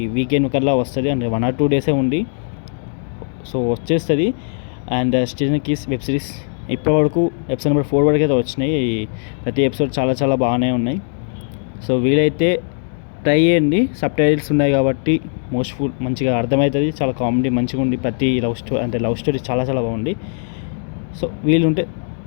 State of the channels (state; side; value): silent; right; digital silence